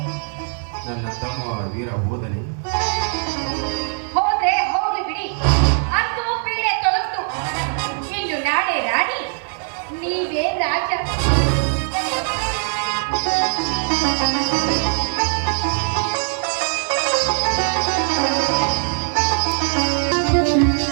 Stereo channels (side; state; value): left; silent; 56 dB below the other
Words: ನನ್ನ ತಮ್ಮ ವೀರ ಹೋದನೆ. ಹೋದ್ರೆ ಹೋಗ್ಲಿ ಬಿಡಿ. ಅಂದು ಬೀಳೆ ತೊಲಗ್ತು. ಇನ್ನು ನಾನೇ ರಾಣಿ, ನೀವೇ ರಾಜ.